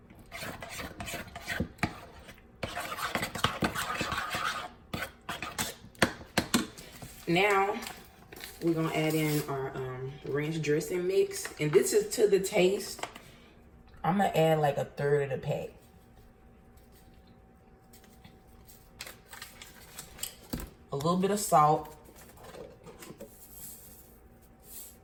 Now, we're going to add in our ranch dressing mix. And this is to the taste. I'm going to add like a 1/3 of the pack. A little bit of salt.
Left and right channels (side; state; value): both; identical; correlation 1.00